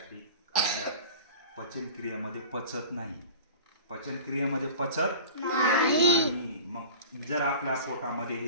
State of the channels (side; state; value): both; inverted; correlation -0.39